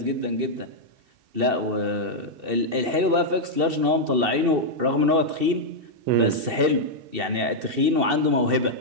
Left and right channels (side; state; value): left; late; 2.7 ms